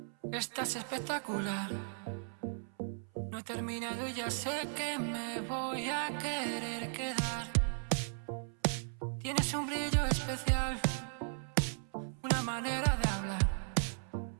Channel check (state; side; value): silent; left; 54 dB below the other